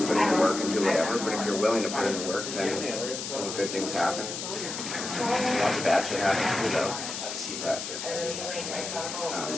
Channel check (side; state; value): left; noise; hiss, 6 dB below the sound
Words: put in the work and do whatever. But if you're willing to put in the work, then good things happen. Lots of bad shit happens too, though.